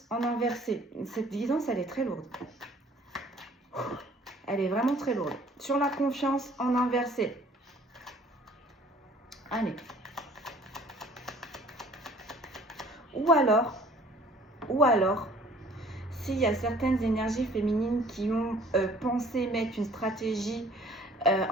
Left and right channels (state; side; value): normal; both; correlation 0.54